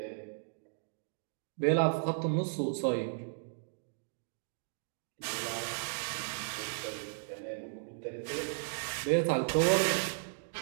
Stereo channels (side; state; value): left; silent; digital silence